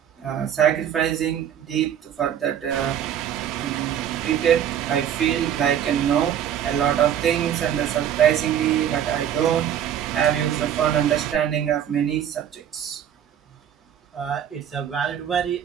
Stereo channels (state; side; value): quieter; left; 9.7 dB